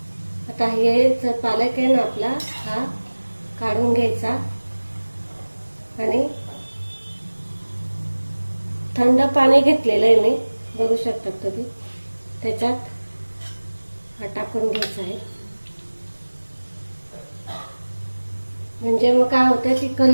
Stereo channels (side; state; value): both; inverted; correlation -1.00